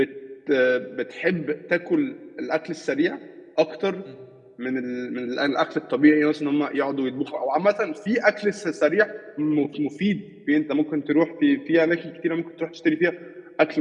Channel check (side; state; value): both; identical; correlation 1.00